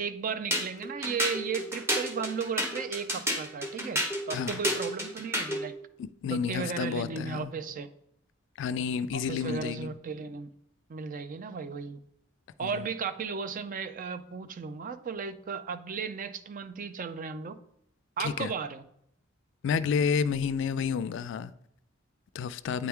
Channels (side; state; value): both; normal; correlation 0.19